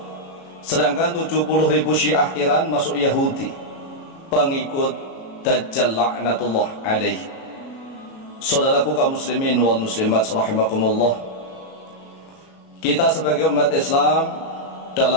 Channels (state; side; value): late; right; 37 ms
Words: sedangkan 70.000 Syiah Iran masuk Yahudi, pengikut Dajjal laknatullah alaih. Saudaraku kaum muslimin wal muslimat rahimakumullah, kita sebagai umat Islam